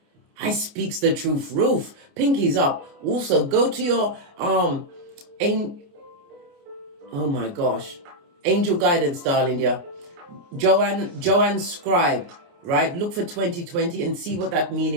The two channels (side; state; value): left; late; 29 ms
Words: I speaks the truth, roof. Pinkies up. Also, go to your oh my gosh, angel guidance, darling dear. Joanne Scribe, right? Look for 2020 and see what that